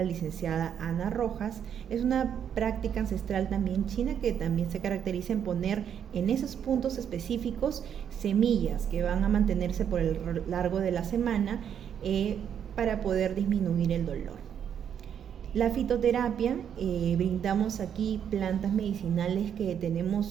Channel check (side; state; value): left; quieter; 8.6 dB